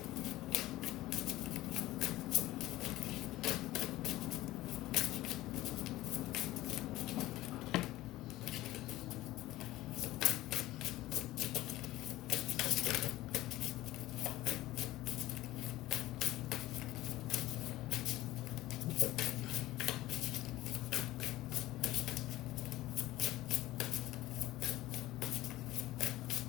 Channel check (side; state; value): right; quieter; 16.8 dB